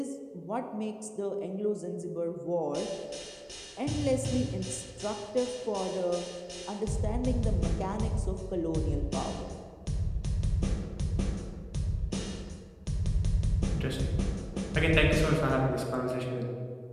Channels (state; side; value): identical; both; correlation 1.00